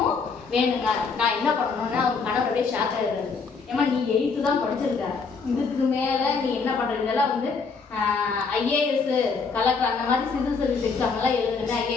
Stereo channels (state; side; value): quieter; right; 4.9 dB